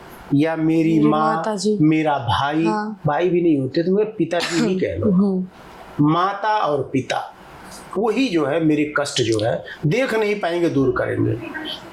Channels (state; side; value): identical; both; correlation 1.00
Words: या मेरी माँ, माताजी, मेरा भाई, हाँ। भाई भी नहीं होते तो मेरे पिताजी ही कह लो, माता और पिता, वही जो है मेरे कष्ट जो है देख नहीं पाएंगे, दूर करेंगे।